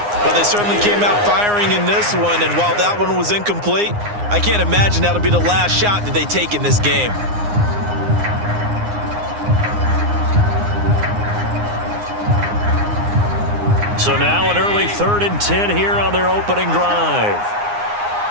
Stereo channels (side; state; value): left; late; 9.7 ms